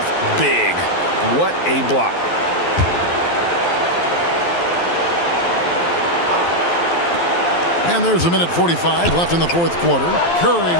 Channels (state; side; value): late; right; 12 ms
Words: big. What a block. And there's a minute 45 left in the 4th quarter. Curry